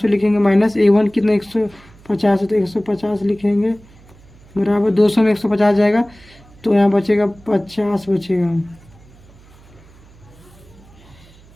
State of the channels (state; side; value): noise; right; hum, 25 dB below the sound